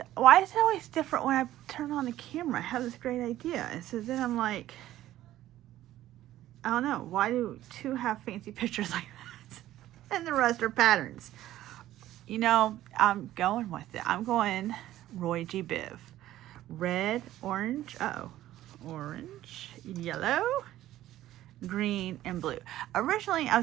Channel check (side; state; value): left; quieter; 14.0 dB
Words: Why is it always different when I turn on the camera? I have this great idea. And so then I'm like, I don't know. Why do two have fancy pictures like that? And the rest are patterns. You know, I'm going with it. I'm going Roy G. Biv. Red, orange, orange, yellow, green, and blue. Originally, I